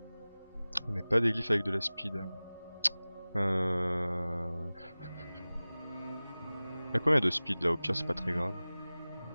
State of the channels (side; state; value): both; inverted; correlation -0.98